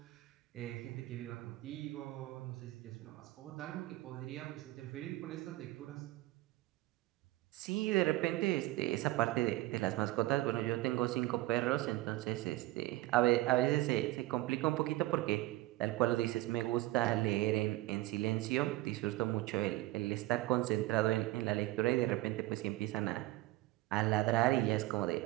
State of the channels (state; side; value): quieter; left; 18.4 dB